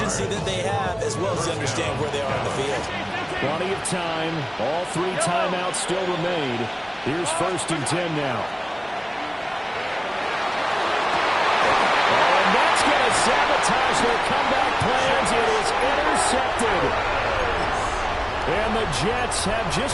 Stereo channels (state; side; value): identical; both; correlation 1.00